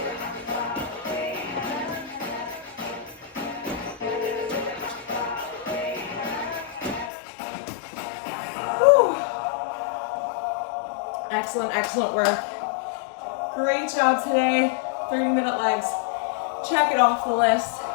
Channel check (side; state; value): right; drops out; at 7.1 s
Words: Excellent, excellent work. Great job today. 30-minute legs. Check it off the list.